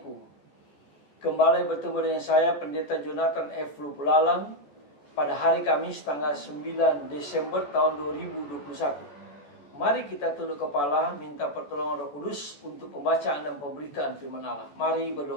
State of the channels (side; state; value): right; late; 14 ms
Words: Kembali bertemu dengan saya, Pendeta Jonathan F. Lupulalang, pada hari Kamis tanggal 9 Desember tahun 2021. Mari kita tunduk kepala, minta pertolongan Roh Kudus untuk pembacaan dan pemberitaan firman Allah. Mari